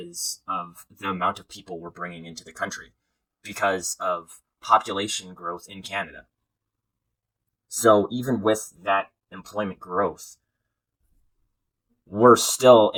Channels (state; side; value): identical; both; correlation 1.00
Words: of the amount of people we're bringing into the country, because of population growth in Canada. So even with that employment growth, we're still